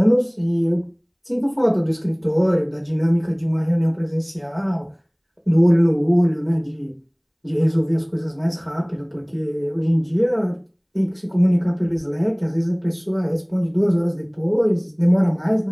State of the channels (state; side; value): identical; both; correlation 1.00